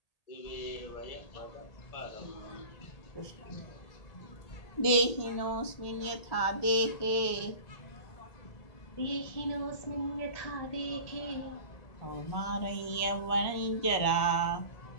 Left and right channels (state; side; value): late; right; 1.8 ms